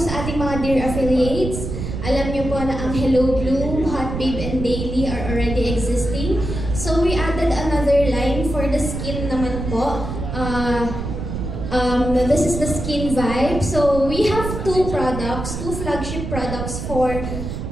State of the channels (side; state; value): right; noise; rumble, 5 dB below the sound